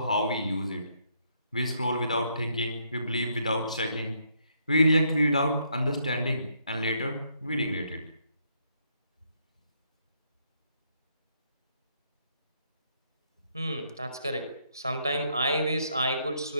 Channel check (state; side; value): inverted; both; correlation -0.73